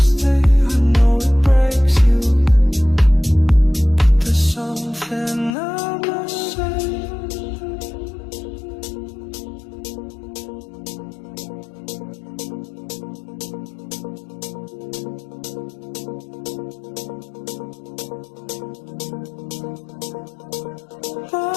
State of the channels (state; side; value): drops out; right; at 5.6 s